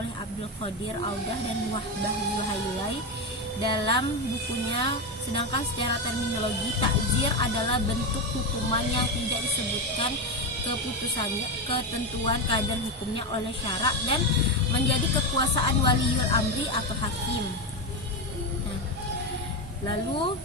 Abdul Qadir Audah dan Wahbah Zuhailai dalam bukunya. Sedangkan secara terminologi, takzir adalah bentuk hukuman yang tidak disebutkan keputusannya, ketentuan kadar hukumnya oleh syarak dan menjadi kekuasaan waliul amri atau hakim. Lalu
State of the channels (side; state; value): both; normal; correlation 0.13